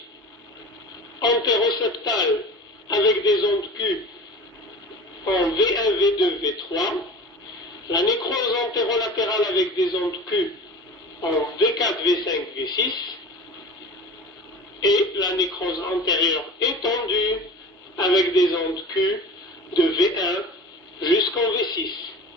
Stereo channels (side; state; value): both; normal; correlation 0.37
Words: antéroseptale avec des ondes Q en V1, V2, V3. La nécrose antérolatérale avec des ondes Q en V4, V5, V6. Et la nécrose antérieure étendue avec des ondes Q de V1 jusqu'en V6.